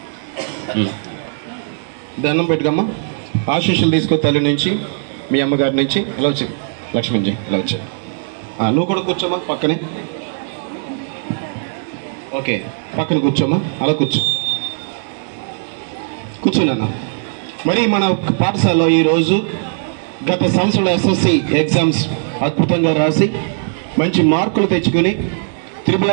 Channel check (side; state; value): left; silent; digital silence